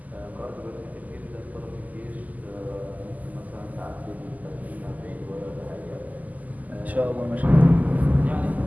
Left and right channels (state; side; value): late; left; 0.079 ms